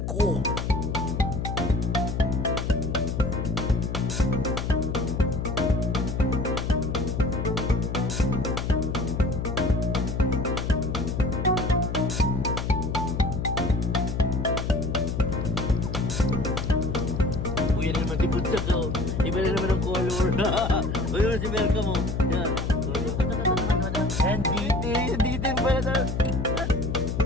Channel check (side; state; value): left; noise; hum, 2 dB below the sound